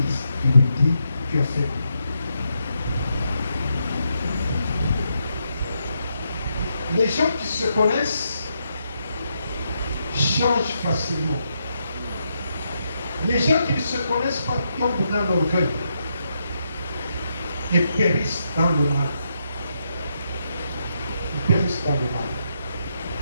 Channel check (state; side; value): inverted; both; correlation -0.80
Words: Tu lui dis, tu as fait le mal. Les gens qui se connaissent changent facilement. Les gens qui ne se connaissent pas tombent dans l'orgueil et périssent dans le mal. Ils périssent dans le mal.